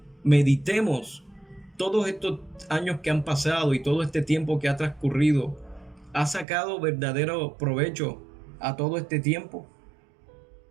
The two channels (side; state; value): left; drops out; at 6.5 s